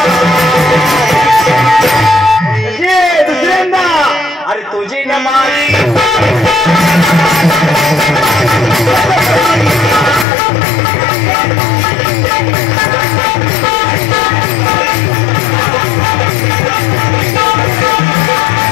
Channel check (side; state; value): right; drops out; at 10.2 s